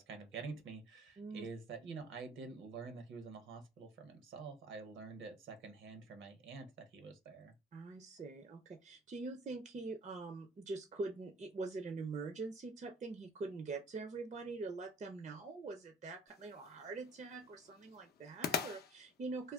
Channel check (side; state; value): both; normal; correlation 0.50